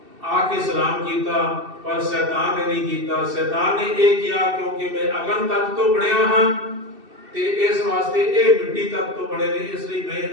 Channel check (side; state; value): left; late; 2.7 ms